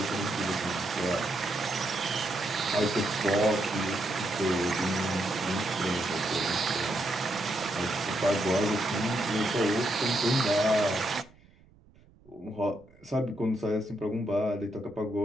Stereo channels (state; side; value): noise; right; rumble, 28 dB below the sound